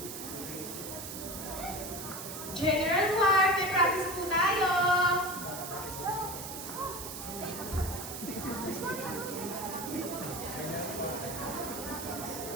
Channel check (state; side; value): noise; right; hiss, 8 dB below the sound